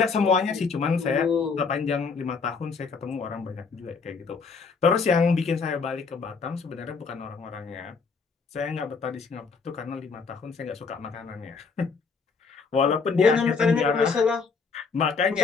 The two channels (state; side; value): quieter; right; 5.0 dB